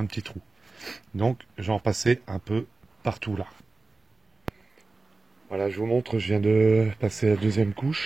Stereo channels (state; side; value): quieter; left; 3.6 dB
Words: petit trou. Donc, je vais en passer un peu partout là. Voilà, je vous montre, je viens de passer la deuxième